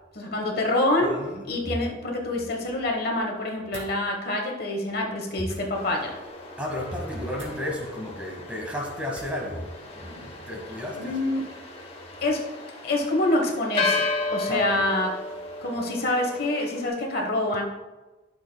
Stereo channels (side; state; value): both; normal; correlation 0.23